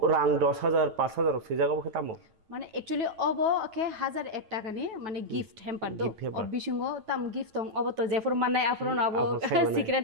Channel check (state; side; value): late; left; 9.2 ms